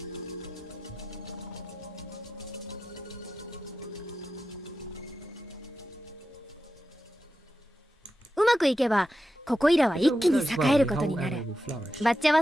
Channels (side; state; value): both; normal; correlation 0.90